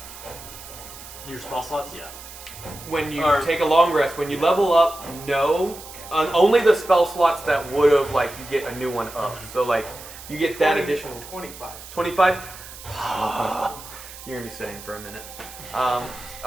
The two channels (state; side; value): noise; right; hiss, 15 dB below the sound